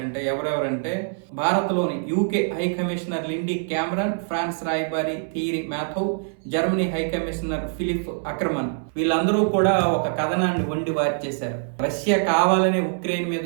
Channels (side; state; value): left; silent; 63 dB below the other